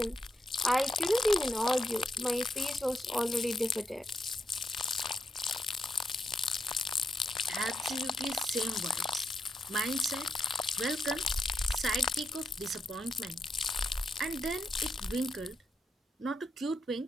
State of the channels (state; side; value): normal; both; correlation 0.83